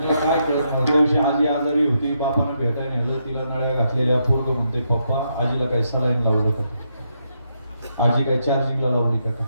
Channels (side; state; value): both; inverted; correlation -0.79